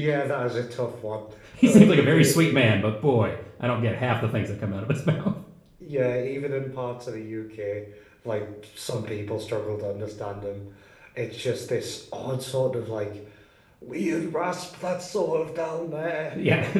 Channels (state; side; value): identical; both; correlation 1.00